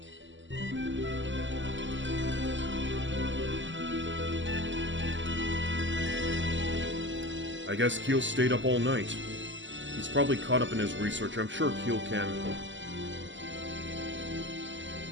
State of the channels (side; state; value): left; late; 0.54 ms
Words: I guess Keele stayed up all night. He's probably caught up in his research. I'm sure Keele can...